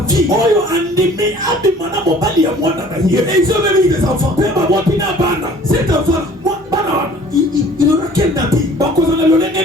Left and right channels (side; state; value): both; normal; correlation 0.51